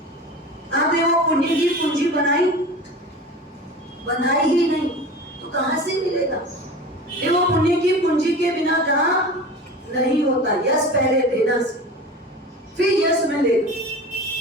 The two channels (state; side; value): normal; both; correlation 0.34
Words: आपने वो पुण्य की पूंजी बनाई ही नहीं, तो कहां से मिलेगा? ये वो पुण्य की पूंजी के बिना काम नहीं होता। यश पहले देना से फिर यश मिलेगा।